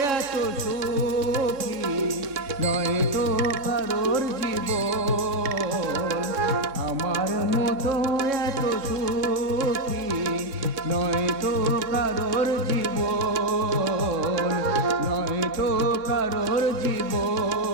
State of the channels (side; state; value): left; late; 3.6 ms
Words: এত সুখী নয় তো কারোর জীবন, আমার মতো এত সুখী নয় তো কারোর জীবন, নয় তো কারোর